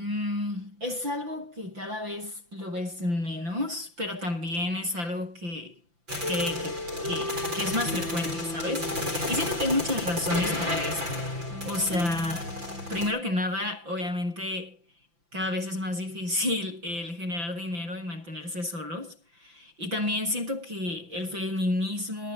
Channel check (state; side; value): late; left; 5.9 ms